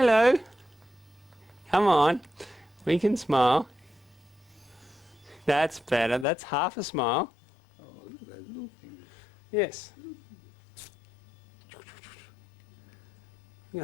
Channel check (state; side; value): drops out; right; at 6.2 s